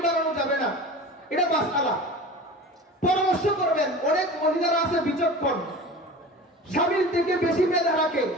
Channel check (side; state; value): both; normal; correlation 0.36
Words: বানানো যাবে না, এটা মাসআলা। পরামর্শ করবেন। অনেক মহিলারা আছে বিচক্ষণ, স্বামীর থেকে বেশি মেধা রাখে,